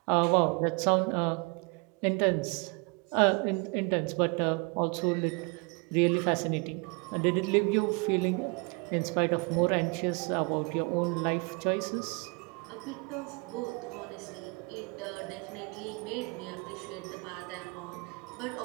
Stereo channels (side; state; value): left; quieter; 31.0 dB